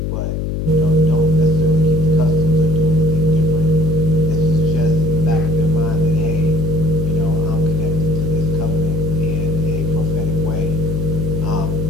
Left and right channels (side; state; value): left; noise; hum, 2 dB below the sound